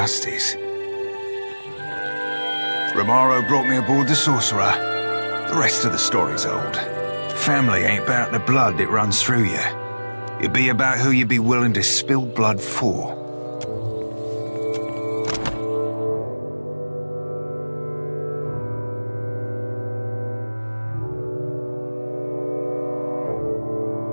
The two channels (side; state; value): both; inverted; correlation -1.00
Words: Romaro brought me aboard the sorcerer. The rest of the story's old. Family ain't about the blood that runs through you. It'd be about who you'd be willing to spill blood for.